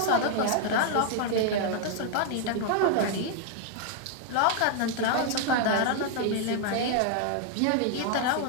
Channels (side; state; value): both; different; correlation 0.00